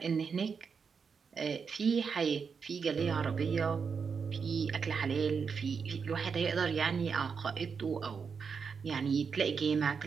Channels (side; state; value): left; quieter; 5.9 dB